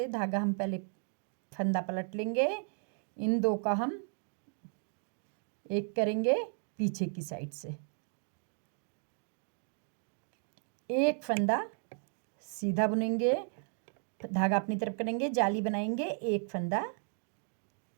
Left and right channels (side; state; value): left; silent; 55 dB below the other